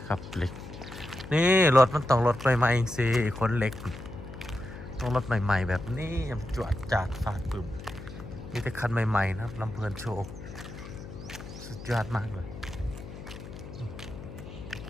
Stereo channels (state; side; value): noise; left; hum, 12 dB below the sound